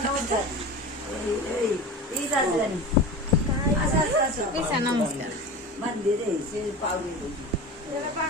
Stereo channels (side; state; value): both; normal; correlation 0.31